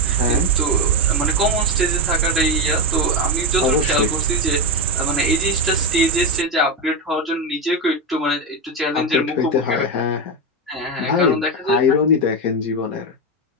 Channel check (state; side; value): normal; both; correlation 0.12